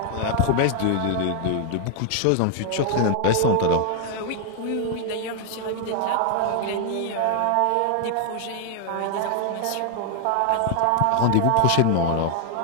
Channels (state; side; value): different; both; correlation 0.00